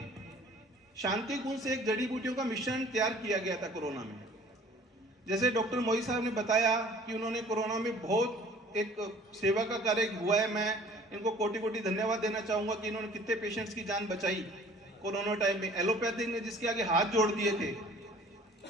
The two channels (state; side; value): normal; both; correlation 0.51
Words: शांति कुंज से एक जड़ी बूटियों का मिश्रण तैयार किया गया था कोरोना में। जैसे डॉक्टर मोई साहब ने बताया कि उन्होंने कोरोना में बहुत एक सेवा का कार्य हुआ है। मैं इनको कोटि कोटि धन्यवाद देना चाहूंगा कि इन्होंने कितने पेशेंट्स की जान बचाई कोरोना टाइम में। एलोपैथिक ने जिसके आगे हाथ जोड़ दिए थे